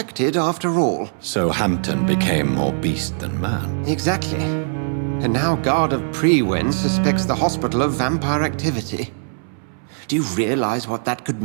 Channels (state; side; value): silent; left; 62 dB below the other